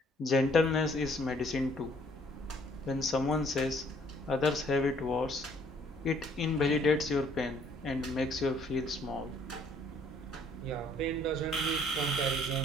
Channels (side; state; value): both; normal; correlation 0.62